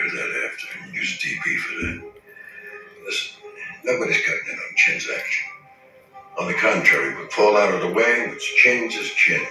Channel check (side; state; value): both; identical; correlation 1.00